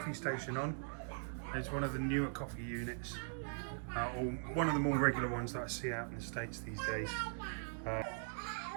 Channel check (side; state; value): left; silent; digital silence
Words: station on. It's one of the newer coffee units, or one of the more regular ones that I see out in the States these days.